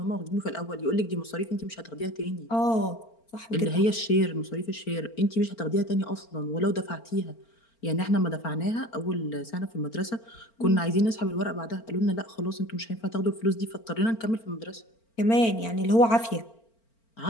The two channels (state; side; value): late; right; 4.4 ms